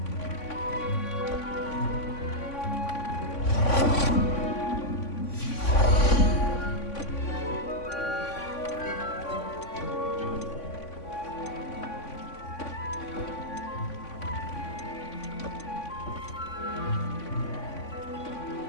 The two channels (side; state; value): right; late; 3.5 ms